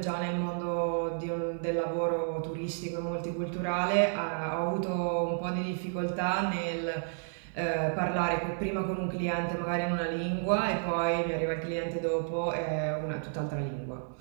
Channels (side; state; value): left; silent; 57 dB below the other